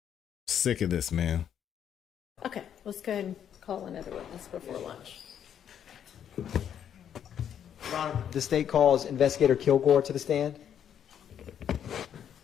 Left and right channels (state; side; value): quieter; right; 9.1 dB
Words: Sick of this, man. Okay, let's go ahead and call another witness before lunch. The state calls Investigator Kilgore to the stand.